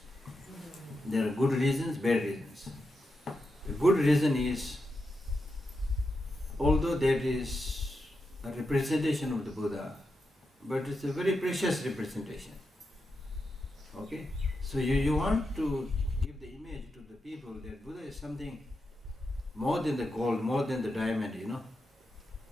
There are good reasons, bad reasons. The good reason is, although that is a representation of the Buddha, but it's a very precious representation. Okay? So you want to give the image to the people that Buddha is something more than the gold, more than the diamond,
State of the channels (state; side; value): normal; both; correlation 0.87